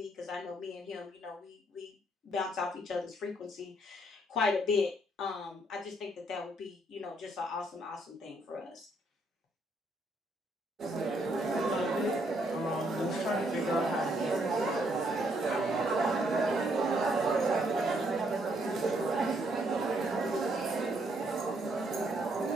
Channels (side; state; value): both; normal; correlation 0.72